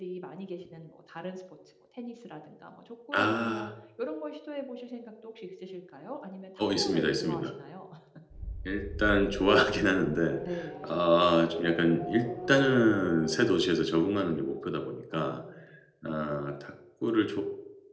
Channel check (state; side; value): identical; both; correlation 1.00